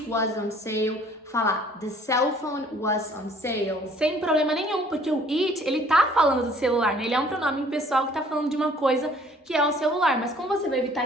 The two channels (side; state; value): both; normal; correlation 0.56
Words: was on sale, falar the cell phone was on sale. Sem problema nenhum, porque o it, ele tá falando do celular, né? Ele é um pronome pessoal que tá falando de uma coisa que é o celular, mas como você vai evitar